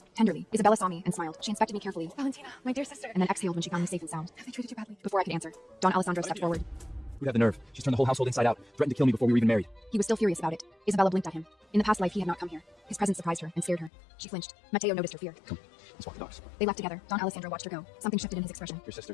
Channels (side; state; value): right; drops out; at 13.9 s